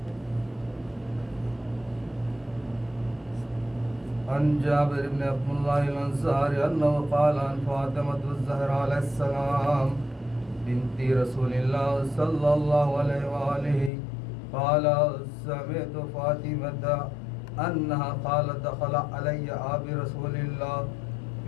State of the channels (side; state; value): right; drops out; at 13.9 s